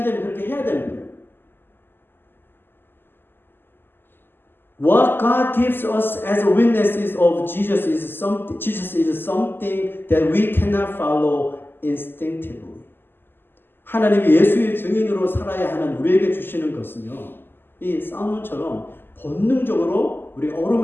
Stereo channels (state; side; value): late; right; 0.098 ms